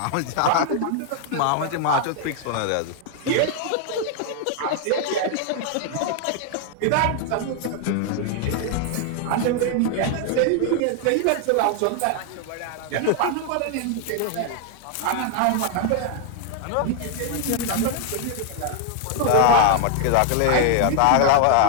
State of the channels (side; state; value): both; different; correlation 0.00